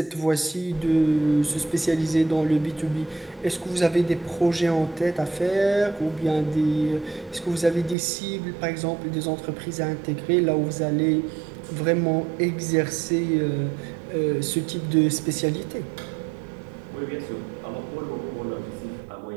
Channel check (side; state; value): left; drops out; at 8.0 s